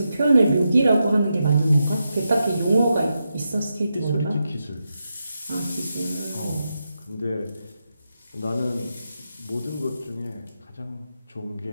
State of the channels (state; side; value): inverted; both; correlation -0.87